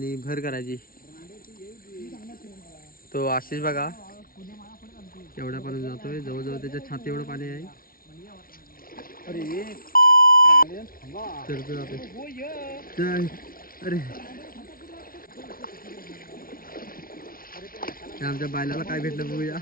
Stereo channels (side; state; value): right; late; 0.43 ms